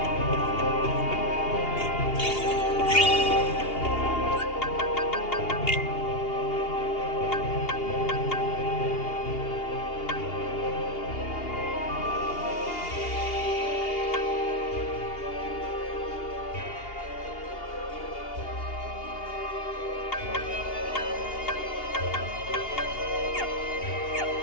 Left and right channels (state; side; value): late; right; 2.8 ms